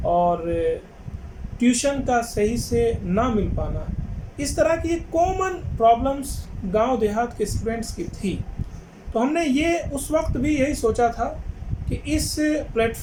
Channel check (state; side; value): identical; both; correlation 1.00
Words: और ट्यूशन का सही से ना मिल पाना, इस तरह की कॉमन प्रॉब्लम्स गांव देहात के स्टूडेंट्स की थी। तो हमने ये उस वक्त भी यही सोचा था कि इस